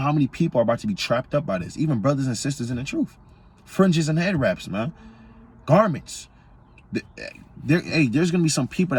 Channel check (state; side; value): identical; both; correlation 1.00